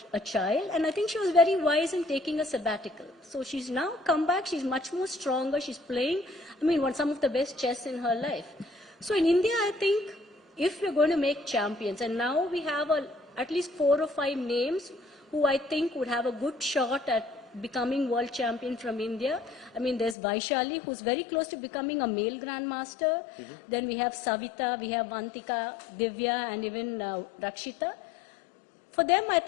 a child, and I think she was very wise in taking a sabbatical. So she's now come back, she's much more stronger, she's playing, some of the best chess in her life. So in India, I think, if we're going to make champions, and now we have at least 4 or 5 names who I think would have a good shot at becoming world champion from India. There's Vaishali, who's very close to becoming a male grandmaster. Mm-hmm. Then we have Savita, we have Vantika, Divya, and even Rakshita. For them, I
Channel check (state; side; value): drops out; right; at 20.2 s